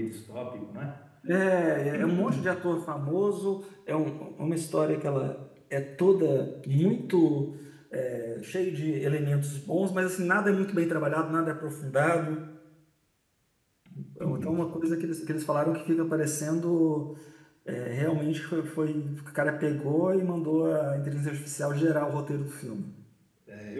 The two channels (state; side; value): identical; both; correlation 1.00